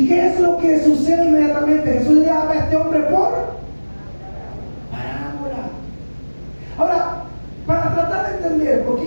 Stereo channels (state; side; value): inverted; both; correlation -1.00